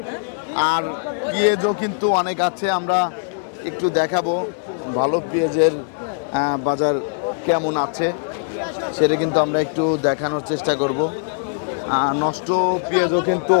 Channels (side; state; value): right; silent; 65 dB below the other